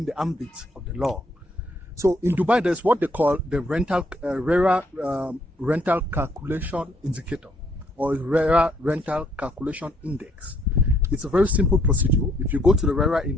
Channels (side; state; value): both; normal; correlation 0.69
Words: the ambit of the law? So in Dubai, there's what they call the RERA rental calculation indicator, or RERA rental calculation index. It's a very simple procedure. If you go to the RERA